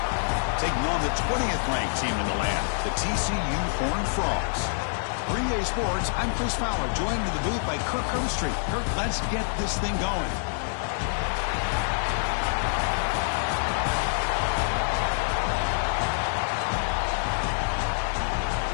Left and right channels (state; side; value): silent; right; 60 dB below the other